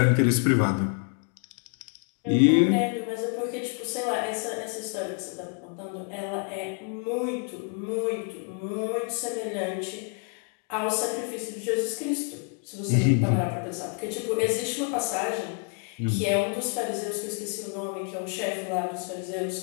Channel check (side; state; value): right; quieter; 39.9 dB